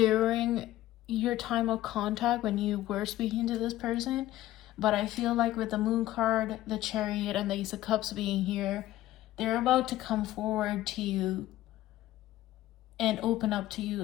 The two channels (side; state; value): right; quieter; 14.9 dB